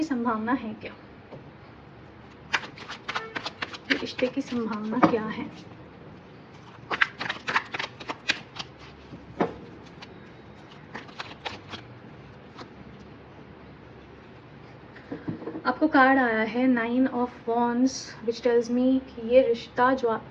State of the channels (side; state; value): both; identical; correlation 1.00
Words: संभावना है क्या. ये रिश्ते की संभावना क्या है. आपको कार्ड आया है 9 ऑफ वॉन्ड्स, विच टेल्स मी कि ये रिश्ता जो